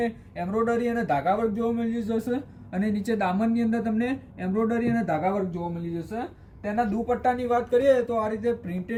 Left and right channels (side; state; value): both; identical; correlation 1.00